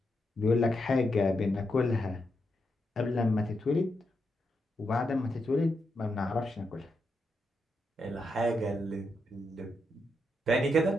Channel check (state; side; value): normal; both; correlation 0.83